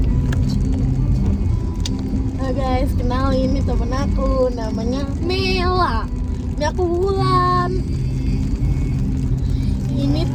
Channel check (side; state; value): both; identical; correlation 1.00